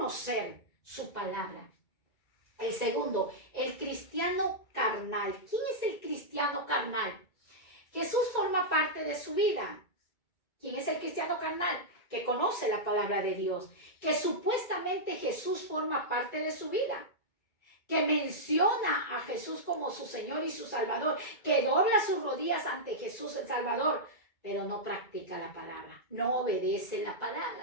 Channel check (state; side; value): late; right; 2.2 ms